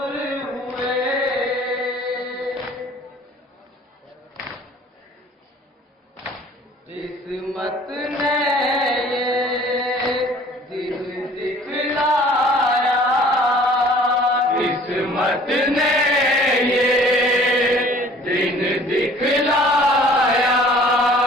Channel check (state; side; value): normal; both; correlation 0.51